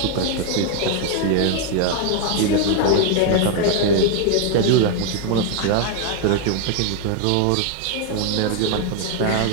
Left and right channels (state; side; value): different; both; correlation 0.01